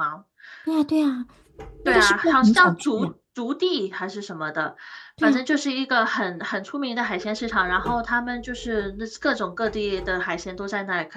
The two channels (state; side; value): identical; both; correlation 1.00